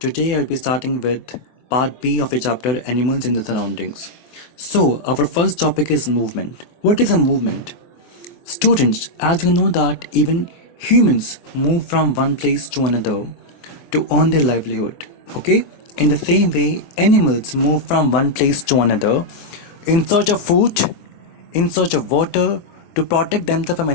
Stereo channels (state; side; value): late; right; 24 ms